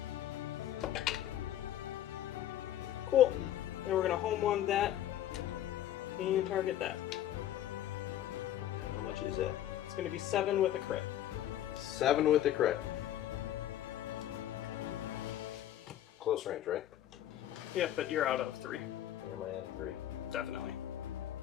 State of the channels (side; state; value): right; quieter; 12.1 dB